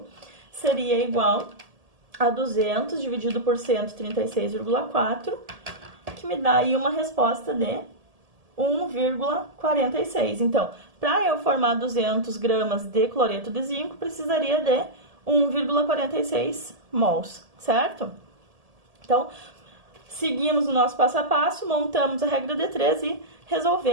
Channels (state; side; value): late; left; 1.7 ms